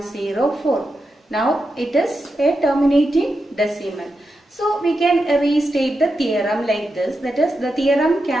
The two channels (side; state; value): both; normal; correlation 0.88